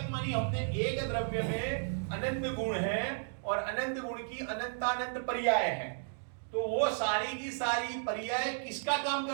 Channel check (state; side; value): silent; left; digital silence